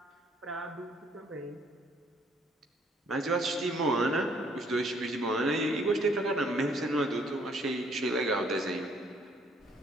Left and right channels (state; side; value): normal; both; correlation 0.64